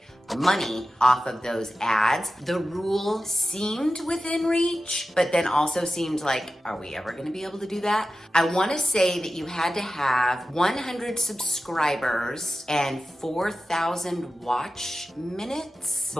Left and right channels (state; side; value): normal; both; correlation 0.93